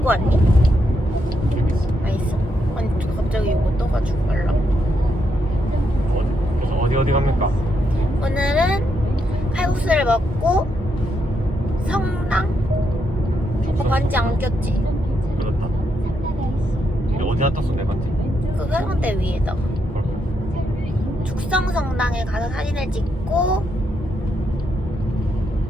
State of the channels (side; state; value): both; normal; correlation 0.80